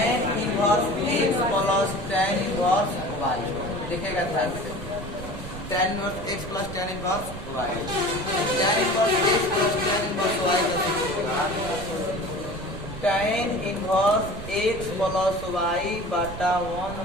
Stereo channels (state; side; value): noise; right; rumble, 10 dB below the sound